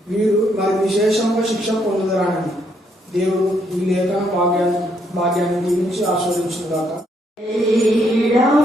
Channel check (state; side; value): normal; both; correlation 0.73